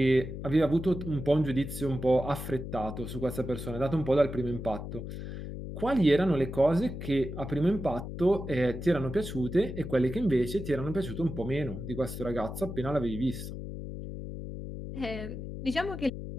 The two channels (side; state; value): left; noise; hum, 8 dB below the sound